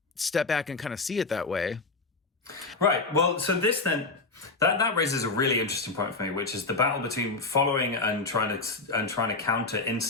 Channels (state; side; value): quieter; right; 3.7 dB